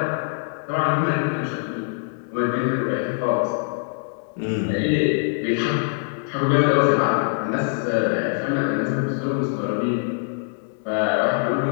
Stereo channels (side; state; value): right; silent; 63 dB below the other